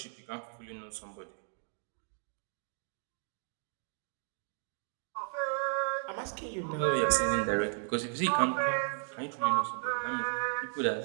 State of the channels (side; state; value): left; silent; 55 dB below the other